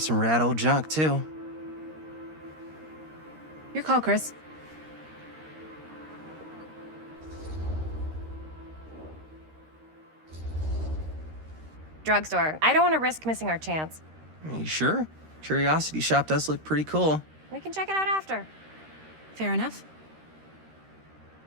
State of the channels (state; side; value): late; left; 13 ms